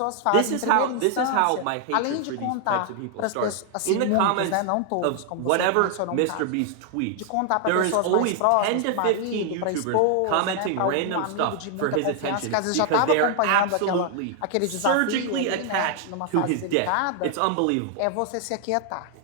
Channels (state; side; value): different; both; correlation 0.00